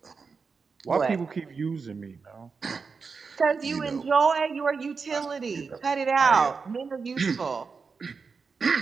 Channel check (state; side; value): quieter; left; 5.0 dB